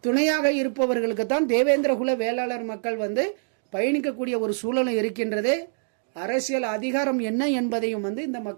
துணையாக இருப்பவர்களுக்கு தான் தேவேந்திரகுல வேளாளர் மக்கள் பயணிக்கக்கூடிய ஒரு சூழலும் இருக்கின்றது. அரசியல் அதிகாரம் என்ன என்பதையும் இந்த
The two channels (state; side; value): silent; left; digital silence